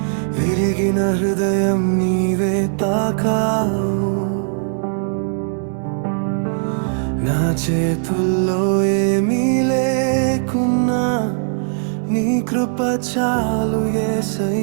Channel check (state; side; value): silent; left; digital silence